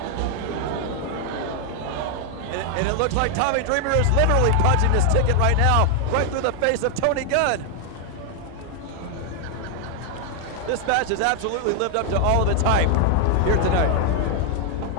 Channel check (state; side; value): different; both; correlation 0.00